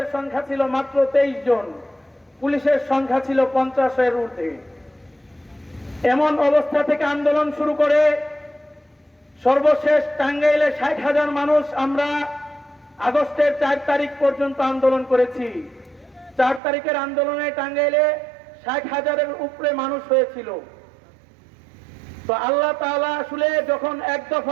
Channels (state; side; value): drops out; left; at 16.6 s